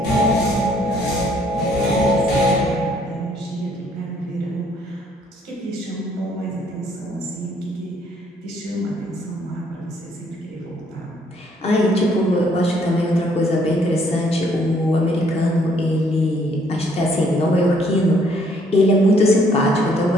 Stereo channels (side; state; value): both; normal; correlation 0.65